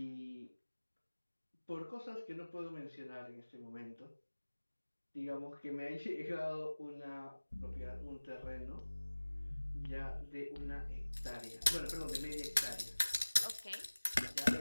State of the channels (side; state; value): both; inverted; correlation -1.00